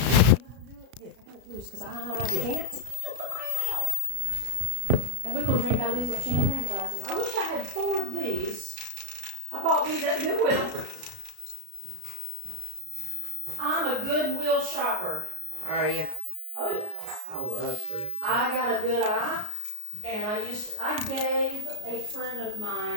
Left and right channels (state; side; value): late; left; 33 ms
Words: got it loose because I can't put my eye out. And we're gonna drink out of these little champagne glasses. I wish I had 4 of these. I bought these at the Goodwill. I'm a Goodwill shopper. Are you? Oh yeah. I love thrift. I got a good eye, and I gave a friend of